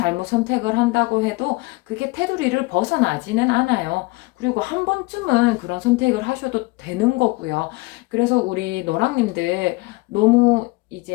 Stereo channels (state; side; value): quieter; right; 23.5 dB